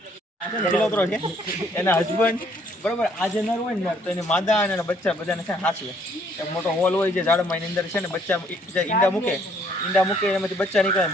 એના હસબન્ડ બરોબર આજે નર હોય ને તો એને માદા અને બચ્ચા બધાને છે હાંસવે. એક મોટો હોલ હોય છે ઝાડમાં, એની અંદર છે ને બચ્ચા ઈંડા મૂકે એનામાંથી બચ્ચા નીકળે.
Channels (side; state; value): both; normal; correlation 0.64